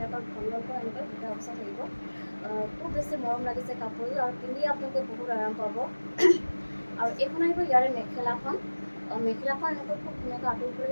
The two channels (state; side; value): inverted; both; correlation -1.00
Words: ঘনকৈ এনেকৈ দুটা অৱস্থা থাকিব। খুব বেছি মৰম লাগিছে কাপোৰযোৰ আৰু পিন্ধি আপোনালোকে বহুত আৰাম পাব। আৰু এইখন আহিব ইয়াৰে মেখেলাখন। মেখেলাখন এনেকৈ খুব ধুনীয়াকৈ